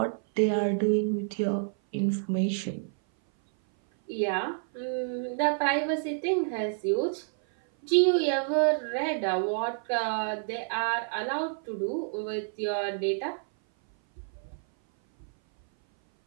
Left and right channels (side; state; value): left; silent; 57 dB below the other